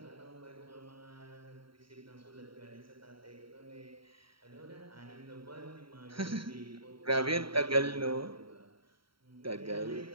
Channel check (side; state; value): left; late; 0.74 ms